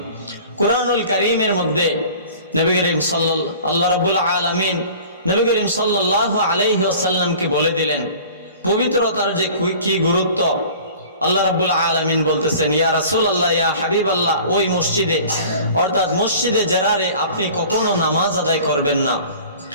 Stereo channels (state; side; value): inverted; both; correlation -0.45